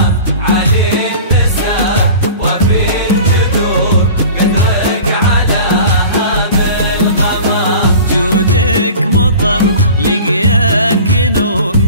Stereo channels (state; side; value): inverted; both; correlation -0.40